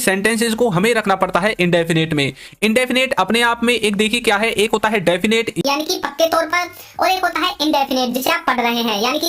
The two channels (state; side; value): identical; both; correlation 1.00